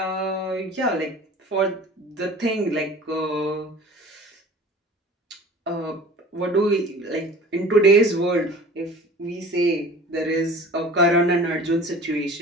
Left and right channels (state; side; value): normal; both; correlation 0.43